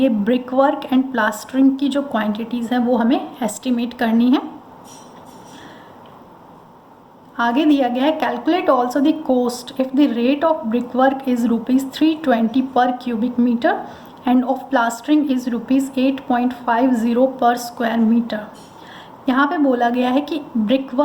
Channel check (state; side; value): identical; both; correlation 1.00